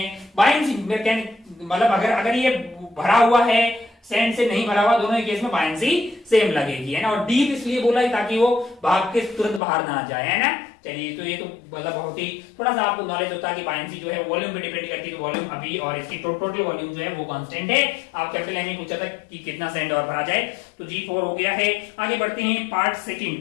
बायंसी मतलब अगर ये भरा हुआ है सैंड से नहीं भरा हुआ, दोनों ही केस में बायंसी सेम लगेगी, है ना। और डीप इसलिए बोला है ताकि वो भाग के तुरंत बाहर ना जाए, है ना। चलिए, तो ये तो मतलब बहुत ही थोड़ा सा आपको नॉलेज होता है कि बायंसी जो है वॉल्यूम पे डिपेंड करती है, तो वॉल्यूम अभी और इसकी टोटल वॉल्यूम जो है वो कांस्टेंट है। आप कैपिटल एम पूछा था कि कितना सैंड और भरा जाए, तो G4 हो गया है। आगे बढ़ते हैं पार्ट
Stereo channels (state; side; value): drops out; right; at 9.6 s